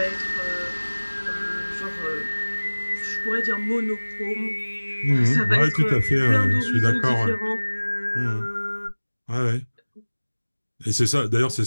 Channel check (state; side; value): inverted; both; correlation -1.00